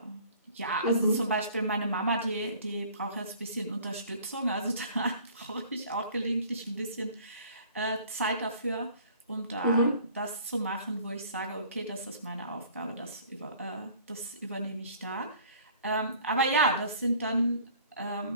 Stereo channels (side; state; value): both; inverted; correlation -0.52